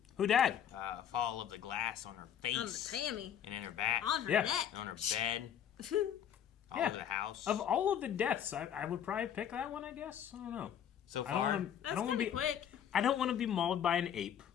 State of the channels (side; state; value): right; quieter; 9.3 dB